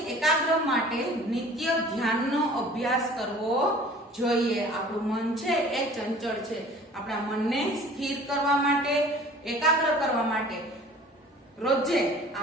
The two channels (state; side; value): normal; both; correlation 0.47